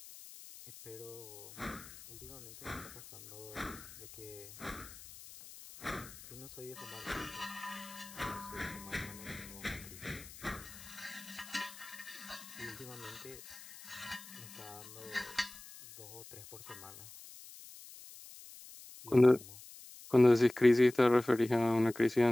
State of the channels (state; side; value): noise; left; hiss, 17 dB below the sound